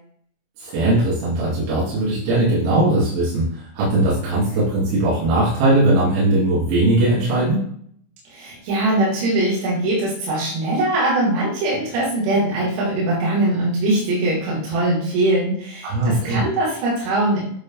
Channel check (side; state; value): left; late; 26 ms